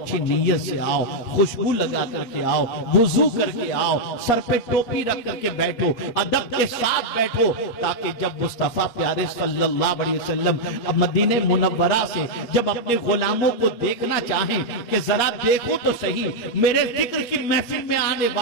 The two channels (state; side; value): late; right; 8.6 ms